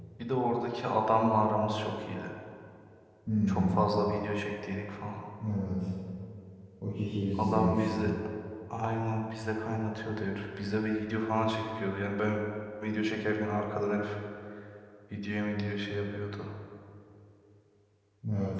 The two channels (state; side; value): identical; both; correlation 1.00